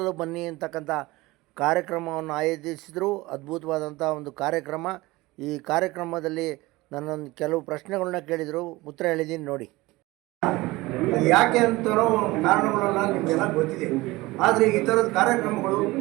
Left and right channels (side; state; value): left; quieter; 20.5 dB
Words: ಬನ್ನಿ ಅಂತಕ್ಕಂಥ ಕಾರ್ಯಕ್ರಮವನ್ನು ಆಯೋಜಿಸಿದರು. ಅದ್ಭುತವಾದಂಥ ಒಂದು ಕಾರ್ಯಕ್ರಮ. ಈ ಕಾರ್ಯಕ್ರಮದಲ್ಲಿ ನನ್ನೊಂದು ಕೆಲವು ಪ್ರಶ್ನೆಗಳನ್ನ ಕೇಳಿದರು, ಉತ್ತರ ಹೇಳಿದ್ದೀನಿ ನೋಡಿ. ಯಾಕೆ ಅಂತರೋ ಕಾರಣಗಳೆಲ್ಲ ನಿಮಗೆಲ್ಲ ಗೊತ್ತಿದೆ. ಆದರೆ ಈ ಥರದ ಕಾರ್ಯಕ್ರಮಗಳು